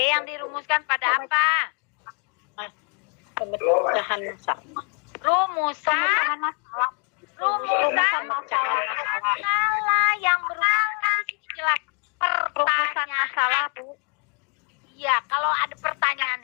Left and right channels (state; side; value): quieter; right; 38.9 dB